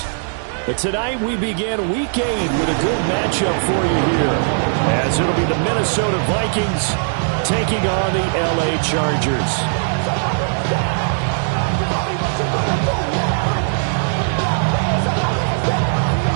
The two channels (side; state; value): left; silent; digital silence